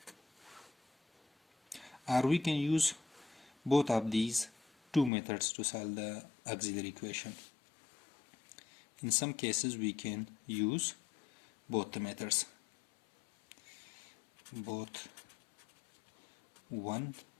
or we can use both of these two methods to solve the auxiliary equation. in some cases we can use both the methods, both 1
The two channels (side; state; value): right; drops out; at 5.1 s